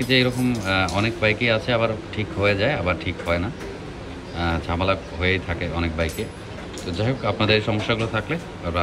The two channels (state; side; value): identical; both; correlation 1.00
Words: যে এরকম অনেক বাইকই আছে, আবার ঠিক হয়ে যায় আবার ঠিক হয় না, ঝামেলা হয়েই থাকে অনেক বাইকে। তো যাই হোক আপনাদের এই সমস্যাগুলো থাকলে